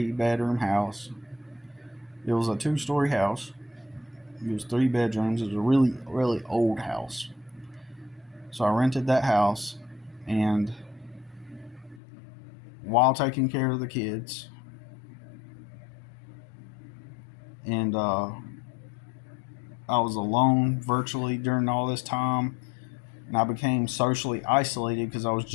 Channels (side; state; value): right; drops out; at 12.0 s